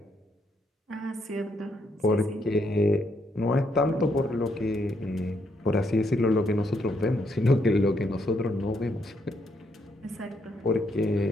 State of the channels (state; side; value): normal; both; correlation 0.75